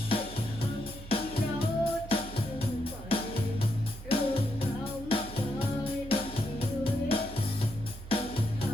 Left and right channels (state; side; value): normal; both; correlation 0.80